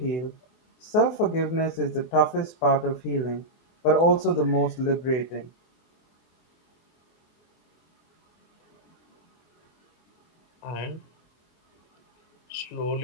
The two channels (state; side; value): late; right; 24 ms